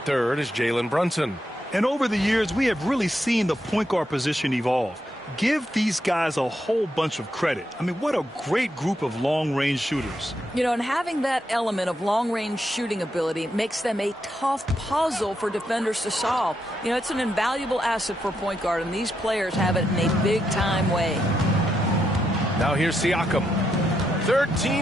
is Jalen Brunson. And over the years, we have really seen the point guard position evolve. Give these guys a whole bunch of credit. I mean, what a great group of long-range shooters. You know, and having that element of long-range shooting ability makes them a tough puzzle for defenders to solve. You know, it's an invaluable asset for point guard, and these players have it in a big-time way. Now here's Siakam.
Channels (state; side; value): normal; both; correlation 0.82